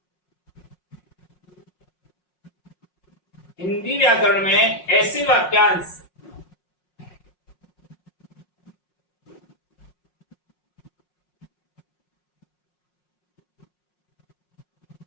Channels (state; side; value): late; right; 5.5 ms